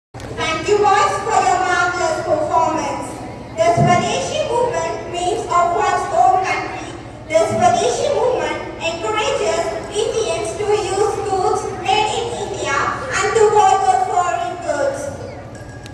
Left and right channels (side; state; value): both; identical; correlation 1.00